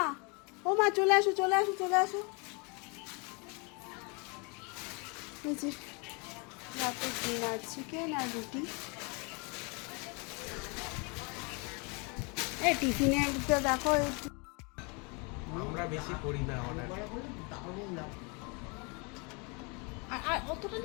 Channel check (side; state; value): right; quieter; 31.8 dB